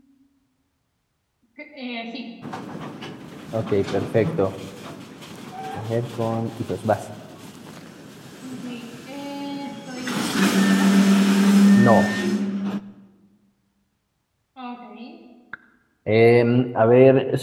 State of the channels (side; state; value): both; identical; correlation 1.00